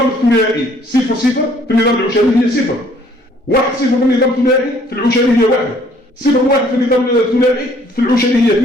الثنائي صفر في النظام العشري هي صفر، 1 0 في النظام الثنائي في العشري هي 1، 0 1 في النظام الثنائي في العشري هي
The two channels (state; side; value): normal; both; correlation 0.60